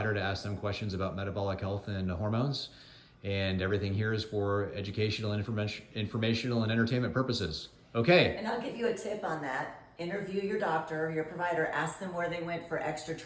to ask them questions about metabolic health and hormones. And everything here is for educational and informational and entertainment purposes. Okay. And I'll give you a tip on that. Interview your doctor, your provider, ask them where they went for extra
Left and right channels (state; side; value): identical; both; correlation 1.00